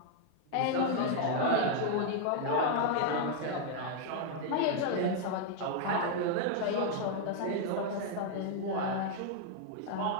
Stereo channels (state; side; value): different; both; correlation 0.00